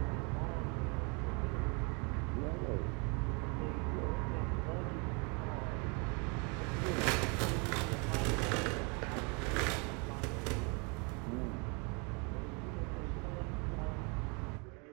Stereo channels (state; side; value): quieter; left; 32.5 dB